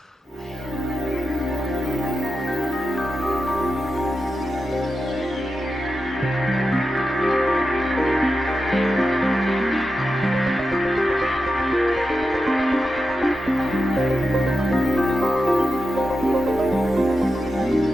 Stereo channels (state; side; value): normal; both; correlation 0.89